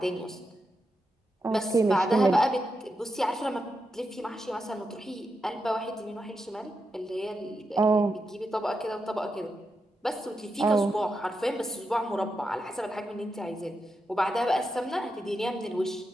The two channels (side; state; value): both; normal; correlation 0.87